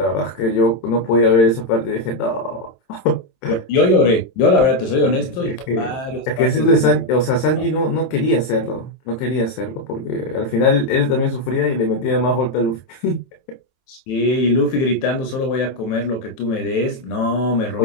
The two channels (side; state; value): right; late; 23 ms